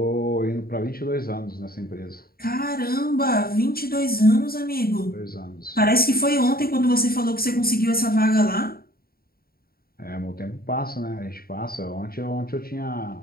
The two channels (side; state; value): right; late; 0.44 ms